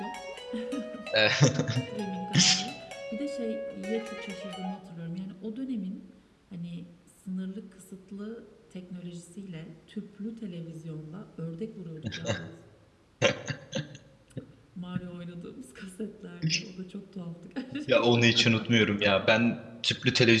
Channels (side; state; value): both; identical; correlation 1.00